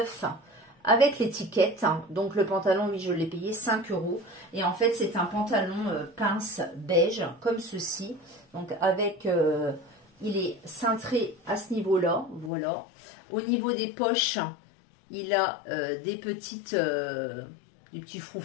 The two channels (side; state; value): right; drops out; at 12.5 s